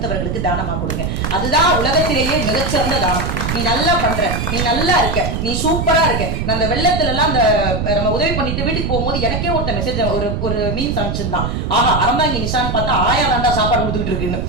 தானமா கொடுங்க. அதுதான் உலகத்திலேயே மிகச்சிறந்த தானம். நீ நல்லா பண்ற, நீ நல்லா இருக்க, நீ சூப்பரா இருக்க. நான் அந்த வெள்ளத்துல எல்லாம் அந்த நம்ம உதவி பண்ணிட்டு வீட்டுக்கு போகும்போது எனக்கே ஒருத்த மெசேஜ் ஒரு மீன்ஸ் அனுப்பிச்சிருந்தான். ஆஹா அறந்தாங்க நிஷான்னு பார்த்தா ஆயா தாண்டா சாப்பாடு கொடுத்துட்டு இருக்குன்னு.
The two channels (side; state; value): right; noise; rumble, 2 dB below the sound